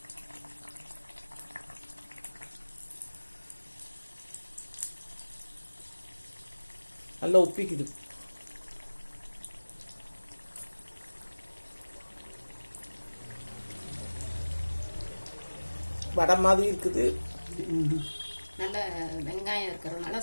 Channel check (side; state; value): both; inverted; correlation -1.00